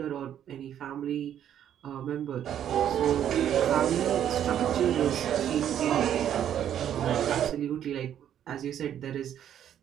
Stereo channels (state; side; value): quieter; left; 10.1 dB